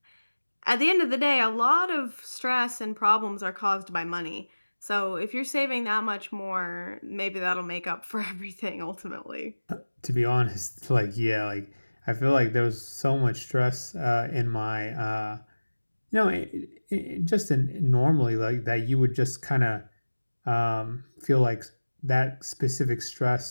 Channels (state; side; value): inverted; both; correlation -1.00